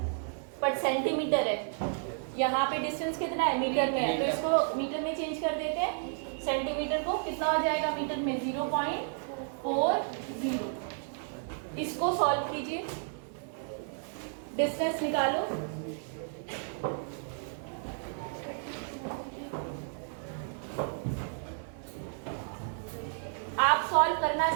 पर सेंटीमीटर है। यहाँ पे डिस्टेंस कितना है, मीटर में है, तो इसको मीटर में चेंज कर देते हैं। सेंटीमीटर को कितना हो जाएगा मीटर में, 0.40। इसको सॉल्व कीजिए, डिस्टेंस निकालो। आप सॉल्व करना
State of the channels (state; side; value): silent; left; 56 dB below the other